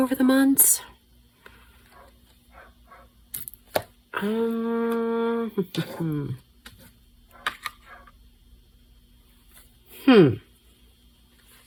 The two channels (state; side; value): identical; both; correlation 1.00